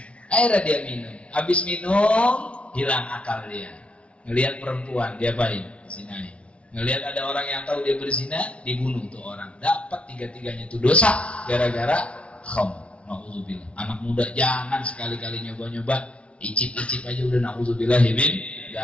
Akhirnya dia minum. Habis minum, hilang akal dia. Ngelihat perempuan, dia baik zinain. Ngelihat ada orang yang tahu dia berzina, dibunuh tuh orang. Dapat 3-tiganya itu dosa gara-gara khamr. Nauzubillah. Anak muda jangan sekali-kali nyoba-nyoba, icip-icip aja udah nauzubillah min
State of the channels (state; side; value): late; right; 0.061 ms